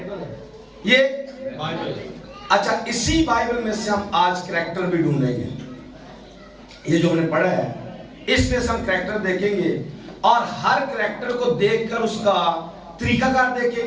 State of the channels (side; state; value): both; identical; correlation 1.00